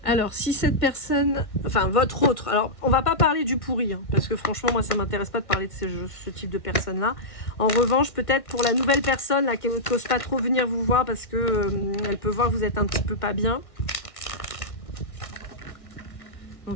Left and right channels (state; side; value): late; right; 1.5 ms